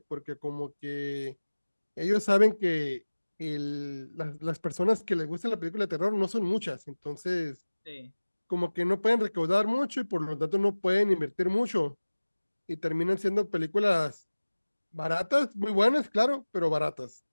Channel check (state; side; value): inverted; both; correlation -1.00